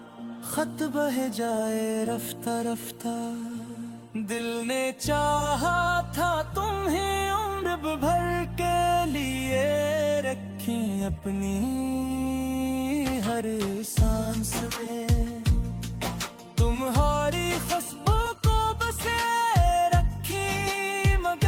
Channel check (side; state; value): both; identical; correlation 1.00